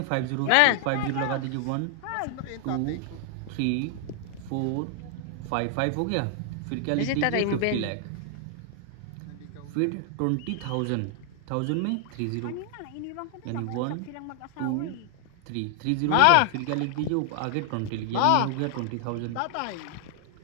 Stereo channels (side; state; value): both; different; correlation 0.00